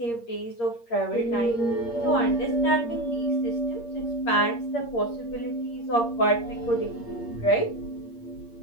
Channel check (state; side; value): late; right; 8.6 ms